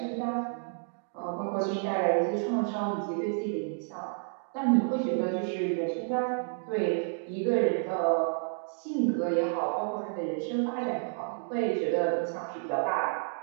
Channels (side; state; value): left; silent; digital silence